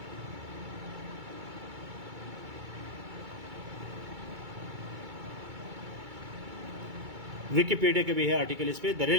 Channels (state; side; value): late; left; 2.3 ms